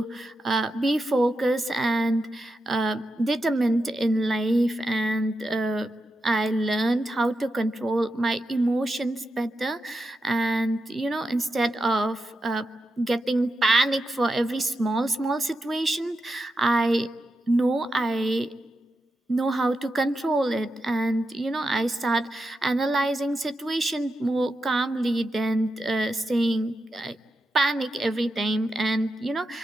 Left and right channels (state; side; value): normal; both; correlation 0.88